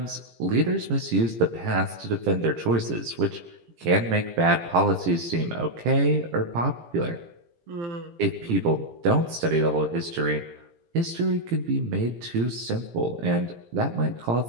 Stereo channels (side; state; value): left; late; 17 ms